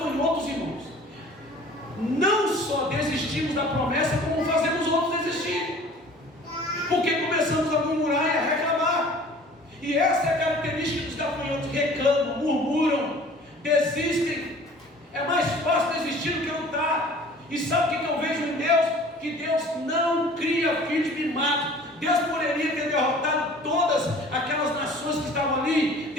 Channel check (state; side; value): normal; both; correlation 0.47